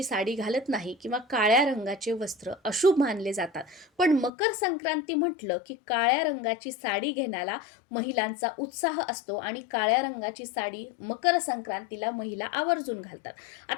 साडी घालत नाही किंवा काळ्या रंगाचे वस्त्र अशुभ मानले जातात. पण मकर संक्रांती म्हटलं की काळ्या रंगाची साडी घेण्याला महिलांचा उत्साह असतो आणि काळ्या रंगाची साडी मकर संक्रांतीला महिला आवर्जून घालतात.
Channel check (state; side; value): drops out; right; at 4.3 s